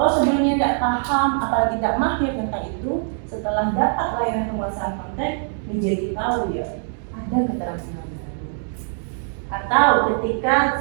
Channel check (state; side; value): silent; left; 64 dB below the other